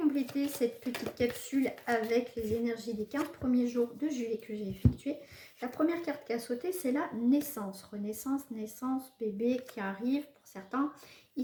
cette petite capsule avec les énergies des 15 premiers jours de juillet que j'ai effectué. La première carte qui a sauté, c'est la naissance. Renaissance, naissance, bébé qui arrive pour certains.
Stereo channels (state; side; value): identical; both; correlation 1.00